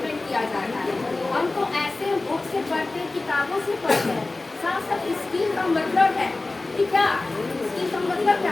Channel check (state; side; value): quieter; right; 3.2 dB